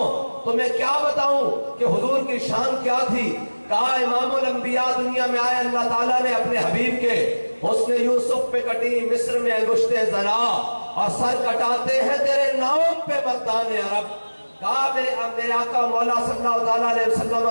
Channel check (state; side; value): inverted; both; correlation -1.00